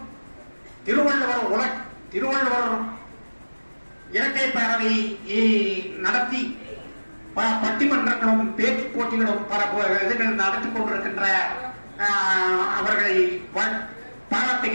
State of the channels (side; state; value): both; inverted; correlation -1.00